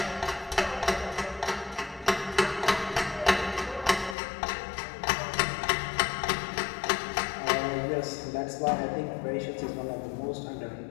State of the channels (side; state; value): right; drops out; at 4.2 s